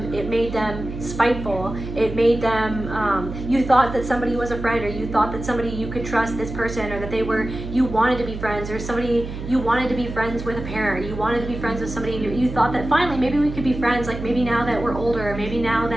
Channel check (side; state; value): right; noise; hum, 8 dB below the sound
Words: spiteful. It made them, you thought that somebody was a friend, or you thought that somebody you could trust this person, or that you wanted to be friends, or somebody, you wanted to be friends with a parent, you wanted to be friends with somebody, and you thought that finally maybe we could be friends, like maybe now that we're older, or maybe now